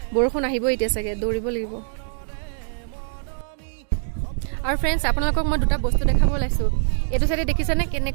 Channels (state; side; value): silent; left; digital silence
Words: বৰষুণ আহিব এতিয়া চাগে, দৌৰিব লাগিব। আৰু ফ্ৰেণ্ডছ, আপোনালোকক মই দুটা বস্তু দেখাব ওলাইছোঁ। এইটো চাইডে দেখিছেনে